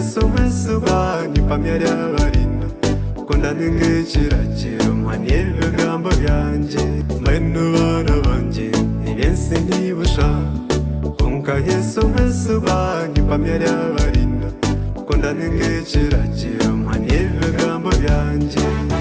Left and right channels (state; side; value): identical; both; correlation 1.00